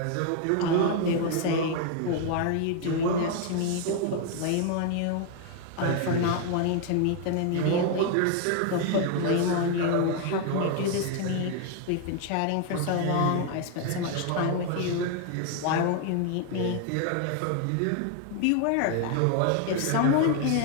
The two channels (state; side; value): different; both; correlation 0.00